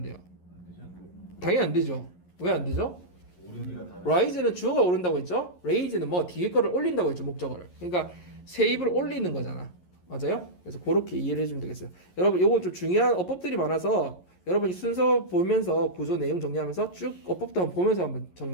돼요? 당연히 안 되죠. 왜 안 되죠? rise는 주어가 오른다고 했죠. raise는 뭐 뒤에 거를 올린다고 했죠, 목적어를. 그러니까 세입을 올리는 거잖아. 맞아요? 그래서 그렇게 이해를 해주면 되겠어요. 여러분 요거 좀 중요한 어법들이 많아서 여러분이 순서 보면서 구조 내용 정리하면서 쭉 어법도 한번 보면서 한번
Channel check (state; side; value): late; right; 11 ms